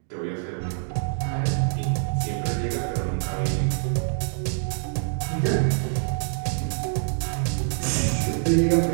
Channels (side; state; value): left; silent; digital silence